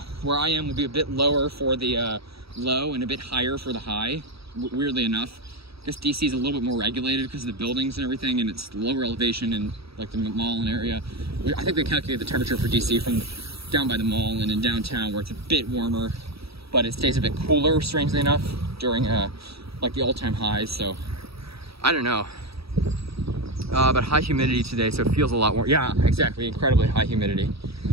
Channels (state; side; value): late; left; 0.77 ms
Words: where I am will be a bit lower for the low and a bit higher for the high, weirdly enough. I guess DC is a little bit more regulated because of the buildings and everything, and it's lower elevation in like the mall and area. I think they calculate the temperature for DC from down by the mall and in downtown, where it's a bit warmer, but it stays a bit cooler, strangely enough, during like the all-time highs. So I don't know, but high humidity today, so it feels a lot more. Yeah, exactly, incredibly high humidity